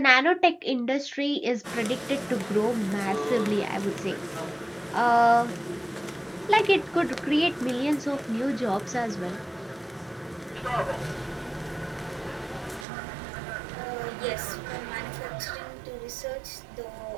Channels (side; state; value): left; drops out; at 12.9 s